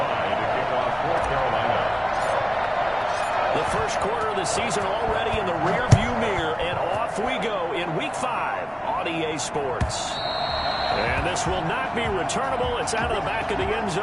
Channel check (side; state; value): both; identical; correlation 1.00